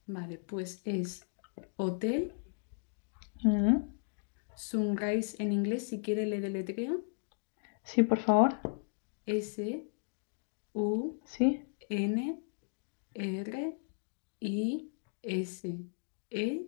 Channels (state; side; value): silent; right; digital silence